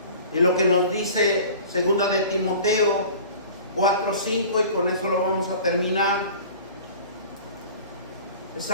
Y lo que nos dice segunda de Timoteo 4:5, y con eso lo vamos a terminar, es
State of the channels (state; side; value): inverted; both; correlation -0.42